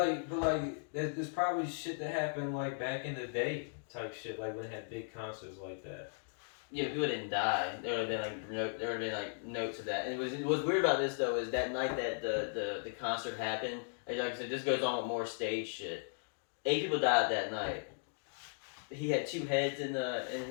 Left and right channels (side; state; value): right; silent; digital silence